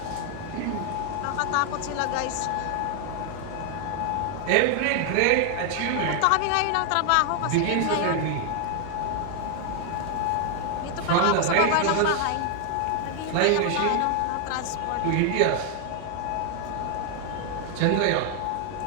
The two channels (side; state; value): both; different; correlation 0.00